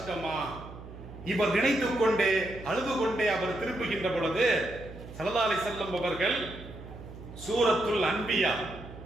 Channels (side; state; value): right; noise; hum, 14 dB below the sound